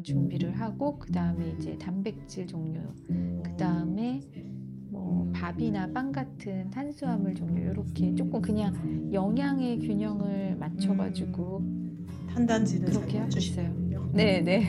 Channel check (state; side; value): identical; both; correlation 1.00